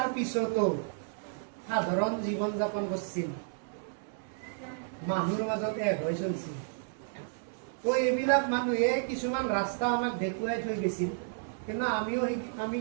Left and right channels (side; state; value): left; silent; 56 dB below the other